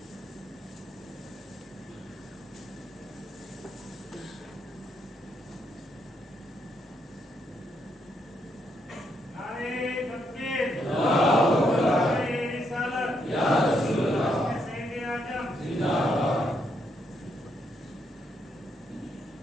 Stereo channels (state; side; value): normal; both; correlation 0.77